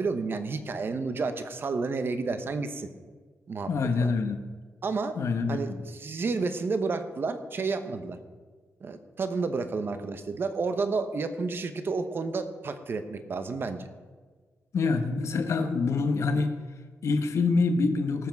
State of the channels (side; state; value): both; normal; correlation 0.79